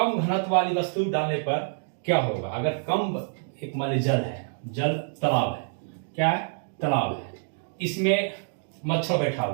घनत्व वाली वस्तु डालने पर क्या होगा। अगर कम, एक मान लीजिए जल है, जल तालाब है, क्या है, तालाब है, इसमें मच्छर बैठा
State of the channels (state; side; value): silent; left; digital silence